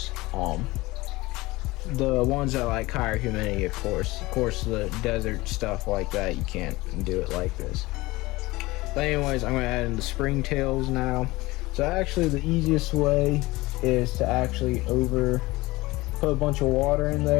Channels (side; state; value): right; quieter; 20.6 dB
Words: The ones that like higher humidity, of course the desert stuff like that, you can't do it like this. But anyways, I'm going to add in the springtails now. So actually the easiest way is to actually put a bunch of water in